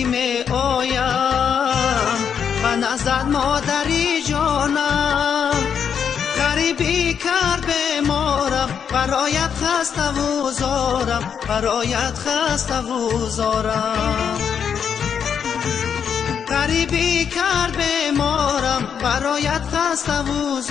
می آیم و نزد مادری جانم. غریبی کرد بیمارم، برایت خسته و زارم، برایت خسته و زارم. غریبی کرد بیمارم، برایت خسته و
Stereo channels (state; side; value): quieter; right; 7.5 dB